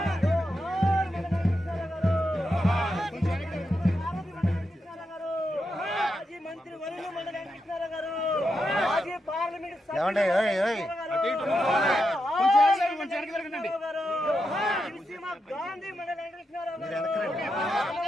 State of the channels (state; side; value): normal; both; correlation 0.86